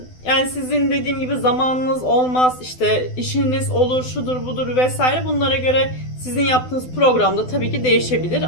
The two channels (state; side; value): late; right; 12 ms